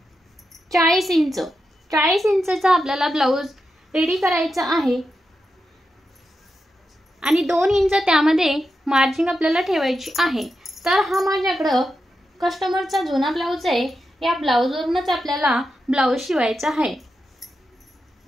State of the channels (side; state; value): both; normal; correlation 0.88